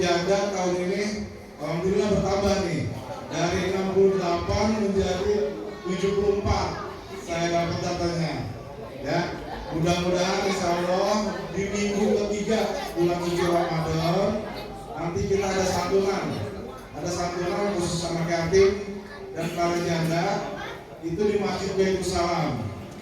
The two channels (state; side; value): identical; both; correlation 1.00